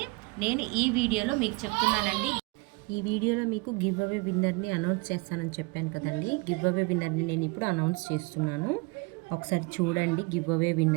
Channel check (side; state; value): left; quieter; 27.3 dB